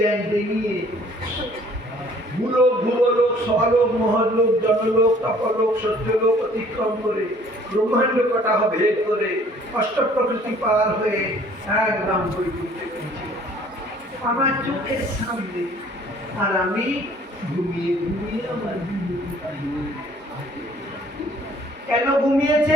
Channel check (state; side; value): normal; both; correlation 0.56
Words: ভূলোক স্বলোক মহলোক জনলোক তপলোক সত্যলোক অতিক্রম করে ব্রহ্মাণ্ড কটাহ ভেদ করে অষ্ট প্রকৃতি পার হয়ে একদম বৈকুণ্ঠে পৌঁছে আমার চোখের সামনে। আর আমি ঘুমিয়ে আমার কেন